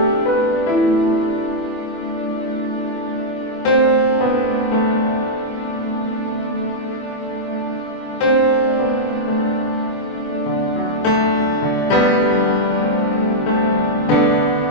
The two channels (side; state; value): right; late; 24 ms